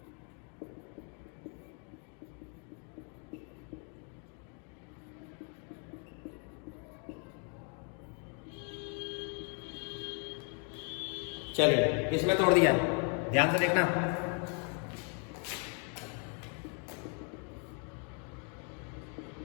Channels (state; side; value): quieter; right; 40.0 dB